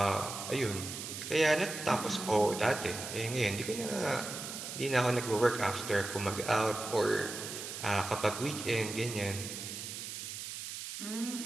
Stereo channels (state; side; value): noise; right; hiss, 7 dB below the sound